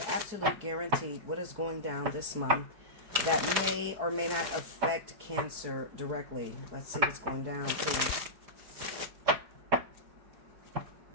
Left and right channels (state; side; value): late; left; 4.9 ms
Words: absolute guaranteed what is going down this month that may or may not affect Cancer directly. Let's see what's going down, please.